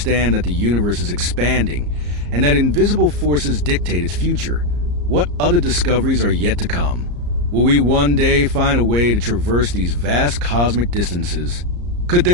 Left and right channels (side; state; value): left; late; 34 ms